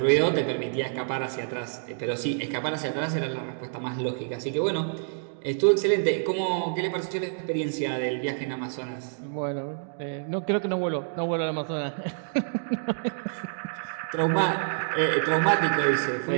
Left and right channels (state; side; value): silent; left; digital silence